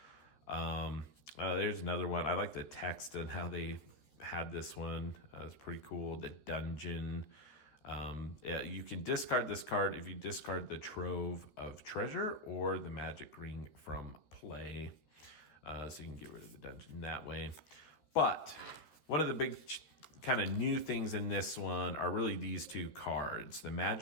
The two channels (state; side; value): late; right; 13 ms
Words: There's another one. I like the text and how they had this one. It was pretty cool. The dungeon. You can discard this card if you discard the trove of treasure or the magic ring from play. So you can get rid of the dungeon that way. But one of the big kind of new things in this one are really these two cards, the